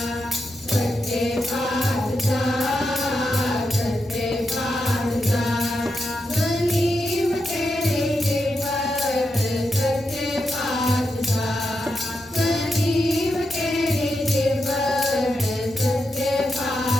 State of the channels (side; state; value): both; normal; correlation 0.86